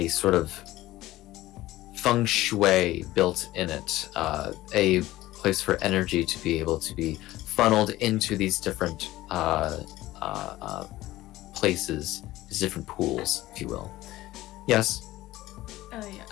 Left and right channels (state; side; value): quieter; right; 16.7 dB